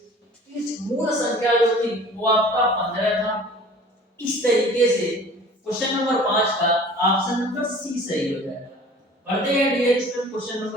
इस मूल संख्या जो थी वो आपका 15 था। इस तरीके से क्वेश्चन नंबर 5 का ऑप्शन नंबर सी सही हो जाएगा। बढ़ते हैं डियर स्टूडेंट क्वेश्चन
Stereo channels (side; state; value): both; normal; correlation 0.46